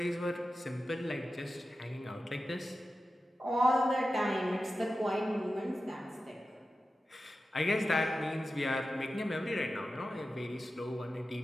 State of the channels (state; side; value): normal; both; correlation 0.93